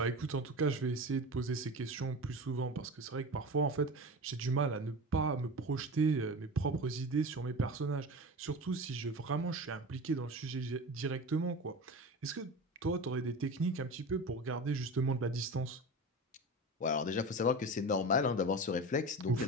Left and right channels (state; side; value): normal; both; correlation 0.29